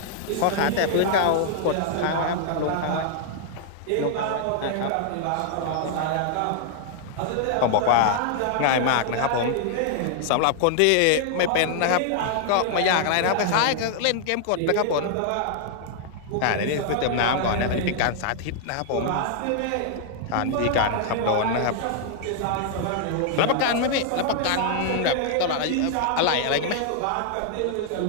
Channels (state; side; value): different; both; correlation -0.01